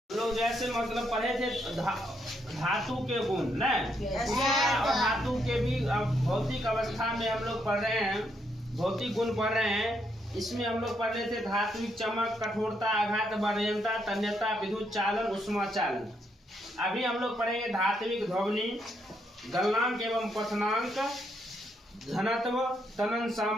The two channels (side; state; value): both; normal; correlation 0.76